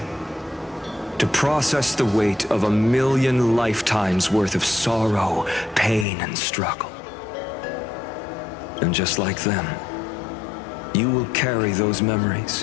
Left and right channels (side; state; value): right; drops out; at 6.1 s